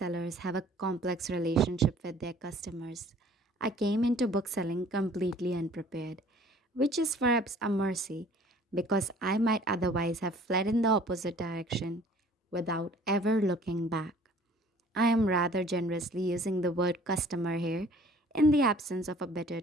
have a complex relationship with their customers. I came into bookselling completely unprepared, which is perhaps a mercy because I might otherwise have fled in the opposite direction without ever looking back. I am rather generously using the word customer here in the absence of a better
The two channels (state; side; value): normal; both; correlation 0.53